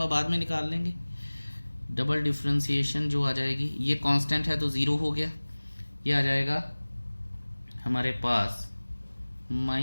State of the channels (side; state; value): both; inverted; correlation -1.00